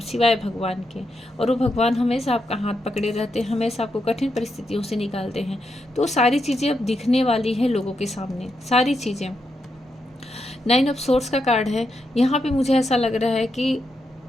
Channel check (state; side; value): normal; both; correlation 0.83